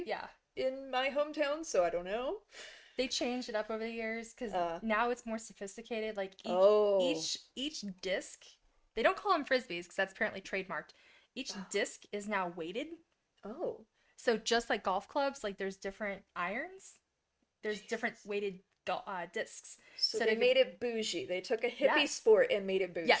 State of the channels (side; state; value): both; identical; correlation 1.00